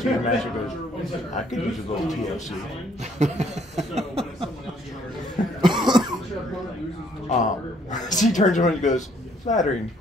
your master and goes, I could use a little TLC. She turns around and goes, flattering,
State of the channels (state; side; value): normal; both; correlation 0.65